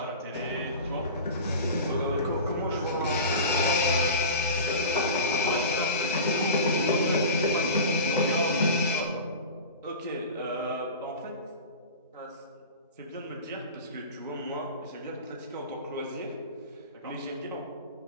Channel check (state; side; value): inverted; both; correlation -0.32